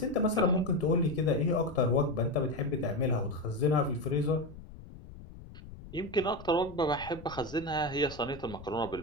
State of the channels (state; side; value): noise; left; rumble, 16 dB below the sound